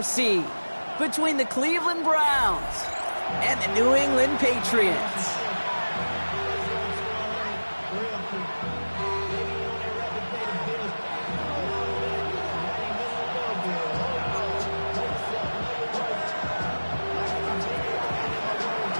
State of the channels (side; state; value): both; inverted; correlation -1.00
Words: between the Cleveland Browns and the New England Patriots.